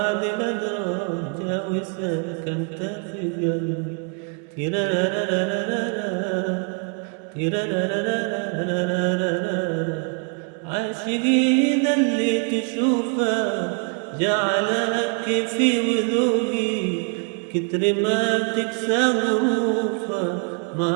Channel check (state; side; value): quieter; left; 39.1 dB